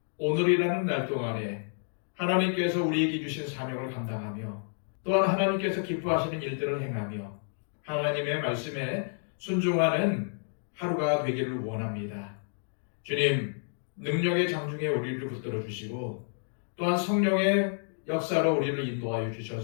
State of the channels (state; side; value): silent; right; digital silence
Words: 오늘이라는 날 동안에 하나님께서 우리에게 주신 사명을 감당하며 또한 하나님께서 기뻐하시는 일들을 행하며 하나님의 말씀에 순종하는 하루가 되기를 원합니다. 주님, 능력의 장중에 우리를 붙들어 주시고 또한 성령의 역사로 우리를 인도하여